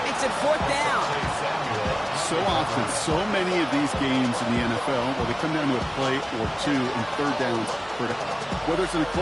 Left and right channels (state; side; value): identical; both; correlation 1.00